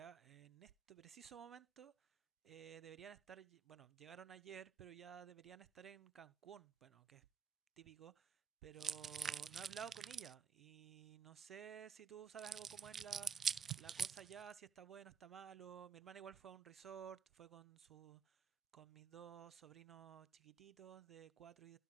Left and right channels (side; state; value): left; quieter; 6.7 dB